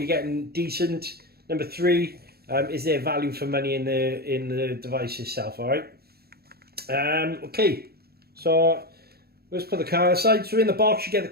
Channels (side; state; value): left; late; 0.46 ms